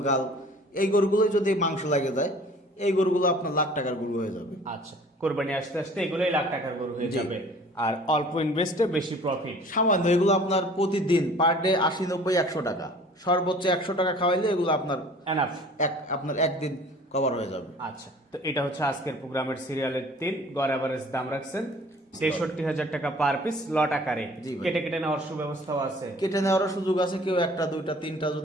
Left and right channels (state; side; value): normal; both; correlation 0.49